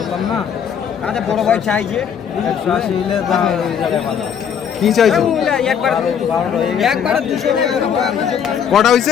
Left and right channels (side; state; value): right; quieter; 7.9 dB